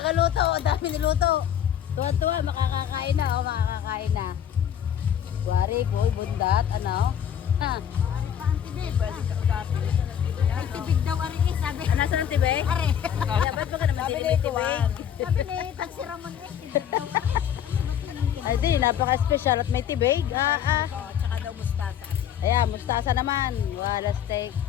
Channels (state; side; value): quieter; right; 9.3 dB